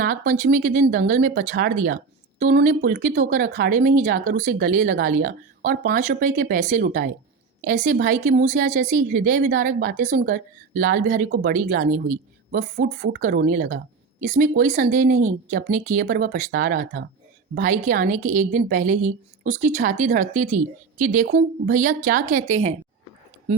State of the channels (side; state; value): left; quieter; 4.9 dB